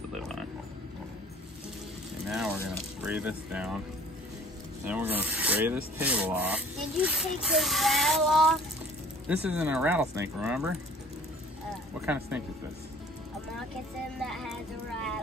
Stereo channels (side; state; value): both; normal; correlation 0.50